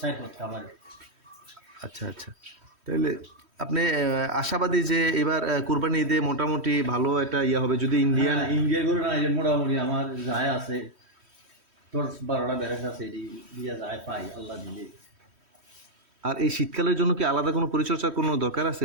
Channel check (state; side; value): late; left; 3.1 ms